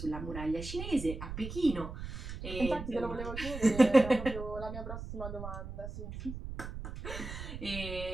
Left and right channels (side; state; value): right; noise; rumble, 8 dB below the sound